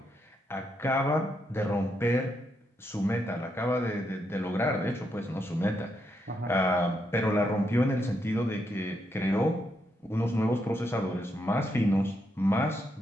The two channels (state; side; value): normal; both; correlation 0.80